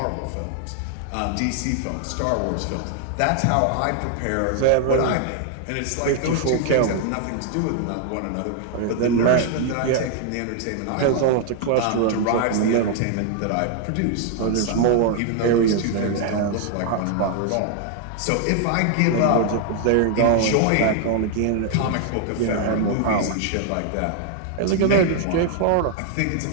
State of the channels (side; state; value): both; different; correlation 0.00